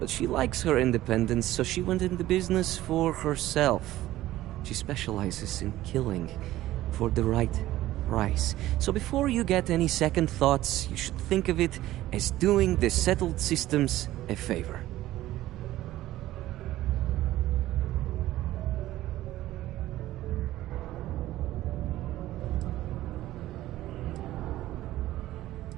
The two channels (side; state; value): left; quieter; 15.2 dB